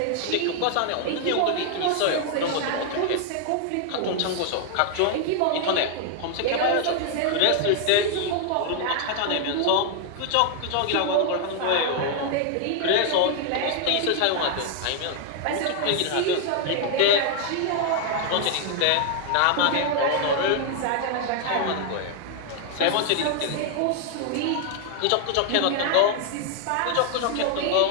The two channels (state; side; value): different; both; correlation 0.00